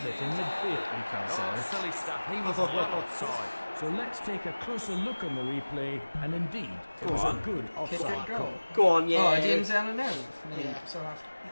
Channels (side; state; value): both; inverted; correlation -1.00